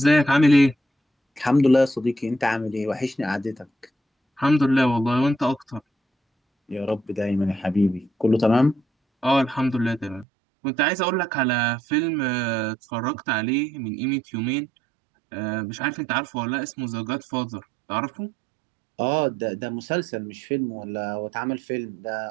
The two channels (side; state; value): left; drops out; at 10.2 s